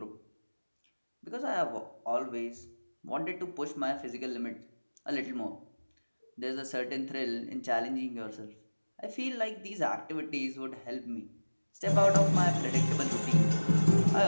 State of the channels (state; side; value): inverted; both; correlation -1.00